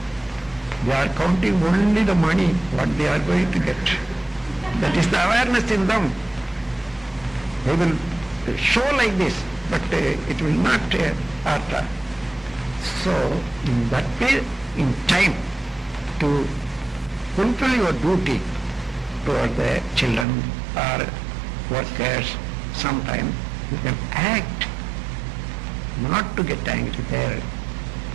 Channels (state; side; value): drops out; left; at 20.2 s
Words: They are counting only the money, what they are going to get. That is the awareness in them. They will show like this, but it will not hurt. So, in that way, in time, to fulfill your duty toward the children or workers, sometime you can act, not to get angry there.